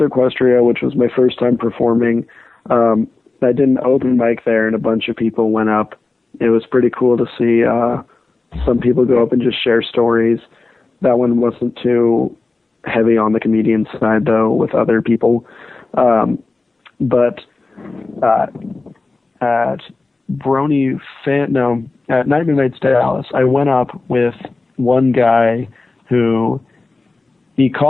Equestria, which was my first time performing, I did an open mic there, and a bunch of people went up. It was pretty cool to see some people go up and just share stories. That one wasn't too heavy on the comedian side, though, with other people. But at at Night Nights Dallas, I went up with one guy who he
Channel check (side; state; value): right; quieter; 3.4 dB